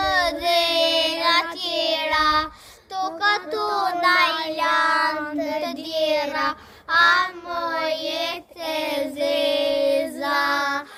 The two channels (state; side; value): identical; both; correlation 1.00